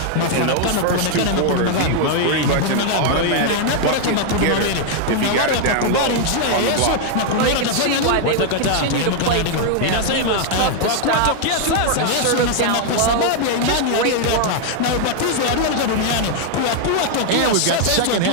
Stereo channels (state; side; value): different; both; correlation 0.00